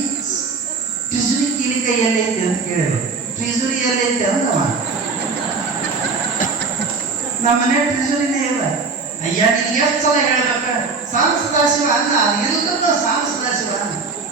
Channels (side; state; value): left; quieter; 4.4 dB